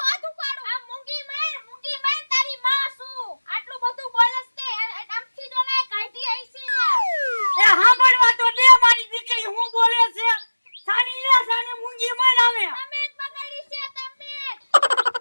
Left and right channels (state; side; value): inverted; both; correlation -1.00